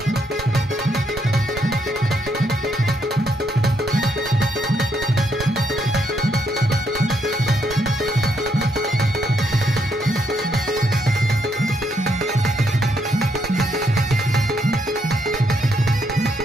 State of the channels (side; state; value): both; normal; correlation 0.75